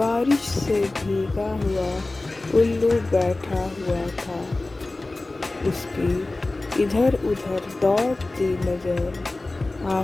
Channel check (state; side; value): quieter; right; 3.0 dB